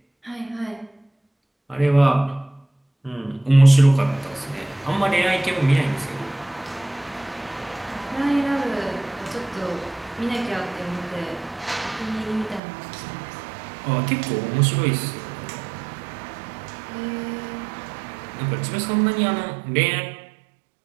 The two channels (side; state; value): left; drops out; at 12.6 s